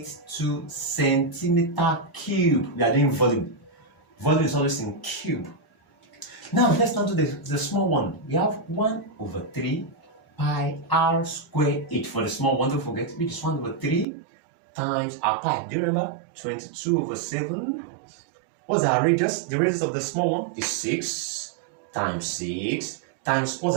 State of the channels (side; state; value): left; drops out; at 14.1 s